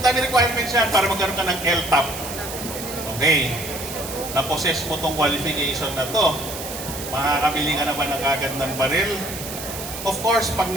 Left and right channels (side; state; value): right; noise; hiss, 9 dB below the sound